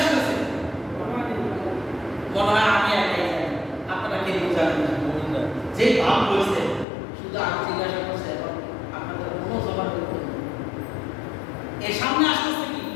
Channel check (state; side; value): drops out; right; at 6.9 s